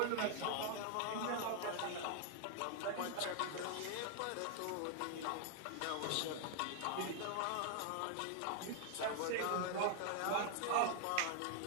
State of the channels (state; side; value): different; both; correlation 0.00